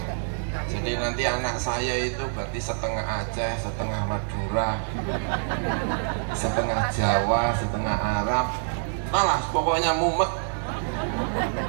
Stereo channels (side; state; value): left; silent; digital silence